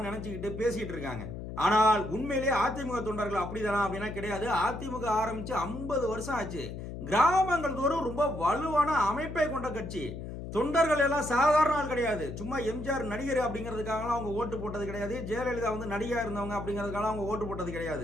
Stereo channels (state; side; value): noise; left; hum, 8 dB below the sound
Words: நினைச்சுக்கிட்டு பேசிட்டு இருக்காங்க. ஆனால் உண்மையிலேயே அதிமுக தொண்டர்கள் அப்படிதானா அப்படின்னா கிடையாது. அதிமுக ஆரம்பிச்சு 50 வருஷம் ஆச்சு. கிராமங்கள் தோறும் ரொம்ப வலுவான அமைப்பை கொண்ட கட்சி. தொண்டர்கள் எல்லாம் சாதாரண ஆள் கிடையாது. சும்மா எம்ஜிஆர் நடிகர் அப்படிங்கிறதுக்காக அவங்க ஓட்டு போட்டது கிடையாது, ஜெயலலிதா வந்து நடிகா இருந்தவங்க அப்படிங்கிறதுக்காக அவங்க ஓட்டு போட்டது